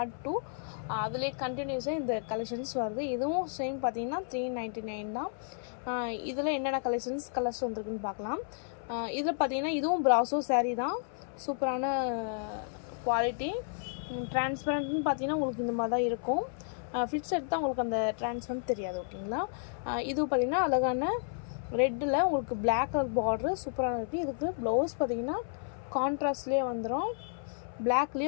2 அதிலே கண்டினியூஸாக இந்த கலெக்ஷன்ஸ் வருது. இதுவும் சேம் பார்த்தீங்கன்னா 399 தான். இதில் என்னென்ன கலர்ஸ் வந்துருக்குன்னு பார்க்கலாம். இதில் பார்த்தீங்கன்னா இதுவும் ப்ராசோ சாரீ தான். சூப்பரான குவாலிட்டி. டிரான்ஸ்பரண்ட்னு பார்த்தீங்கன்னா உங்களுக்கு இந்த மாதிரி தான் இருக்கும். ஃபிட்ஸ் எடுத்தால் உங்களுக்கு அந்த டிரான்ஸ்பரண்ட் தெரியாது ஓகேங்களா. இது பார்த்திங்கன்னா அழகான ரெட்டில் உங்களுக்கு பிளாக் கலர் பார்டரு சூப்பராக இருக்குது. இதுக்கு ப்ளவுஸ் பார்த்திங்கன்னா கான்ட்ராஸ்ட்லேயே வந்துடும்,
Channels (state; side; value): silent; right; 56 dB below the other